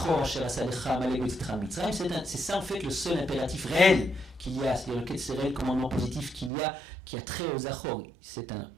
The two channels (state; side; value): drops out; left; at 6.5 s